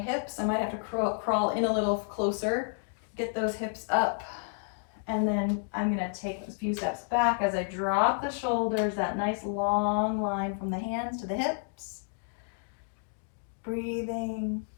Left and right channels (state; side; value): silent; right; digital silence